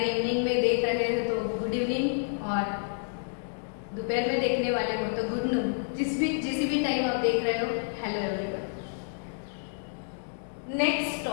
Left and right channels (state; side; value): silent; right; digital silence